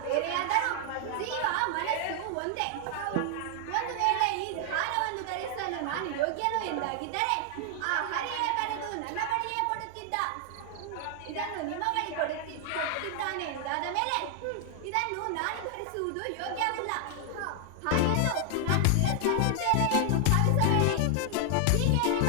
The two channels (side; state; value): both; different; correlation 0.00